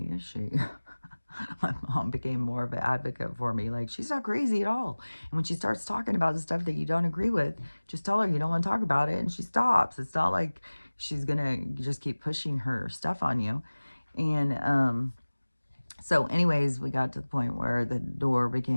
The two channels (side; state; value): both; inverted; correlation -1.00